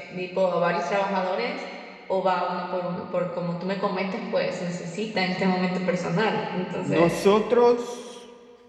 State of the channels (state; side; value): identical; both; correlation 1.00